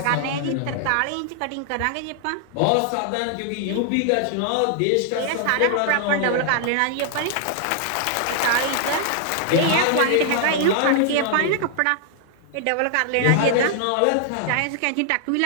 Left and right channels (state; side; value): different; both; correlation 0.00